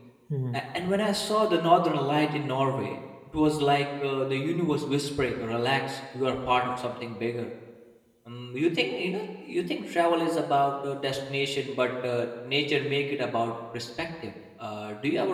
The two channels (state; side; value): identical; both; correlation 1.00